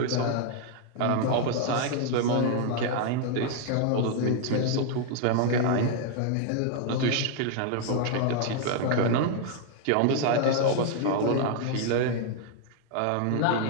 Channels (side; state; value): both; different; correlation 0.00